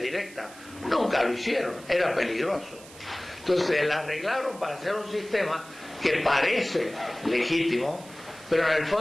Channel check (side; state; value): right; noise; hiss, 19 dB below the sound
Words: Nunca lo hicieron, era peligroso. Entonces la arreglaron para hacer un sistema que parece legítimo, pero en el